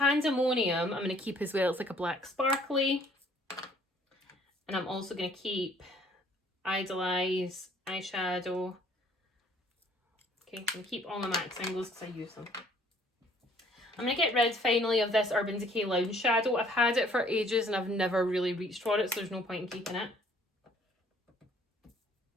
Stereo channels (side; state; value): both; normal; correlation 0.59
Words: I'm going to keep as well. It's like a black sparkly. And I'm also going to keep Idolize eyeshadow. Okay, I'm going to keep all my MAC singles because I use them. I'm going to get rid finally of this Urban Decay Lounge Shadow. I've had it for ages and I've never really reached for it, so there's no point in keeping it.